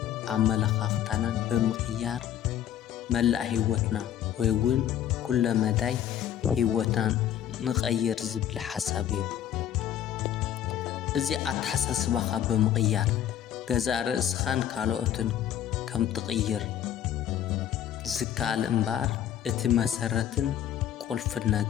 عملخاختانا بمقيار ملأ هيوتنا ويون كل مداي هيوتان نغير زبل حسابيو ازي اتحساسباخا بمقيار غزا رأسخان كالوتن كم تغير زكال انبار اتي مسرتن قلف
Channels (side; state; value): right; quieter; 10.6 dB